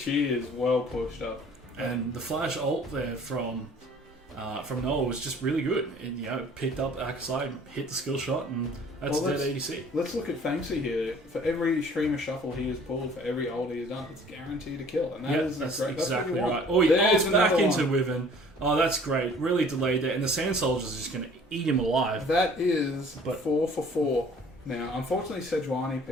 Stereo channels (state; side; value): normal; both; correlation 0.52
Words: is well pushed up. And the flash ult there from Noah was just really good. It picked up Akasai, hit the skill shot, and that's dead ADC. Let's look at Fanksy here. For every Shurima shuffle he has pulled, for every ult he has done, it's guaranteed a kill. And that's exactly right. Oh, he ults back into Wyvern. Oh, that's great. Really delayed there. And the Sand Soldier's just going to eat him alive. That is 4 for 4. Now, unfortunately, Sejuani